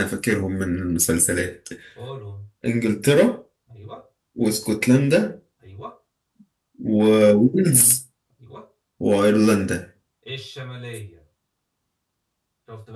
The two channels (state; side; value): identical; both; correlation 1.00